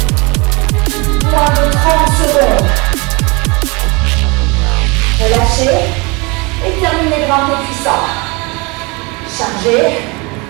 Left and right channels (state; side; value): quieter; left; 27.6 dB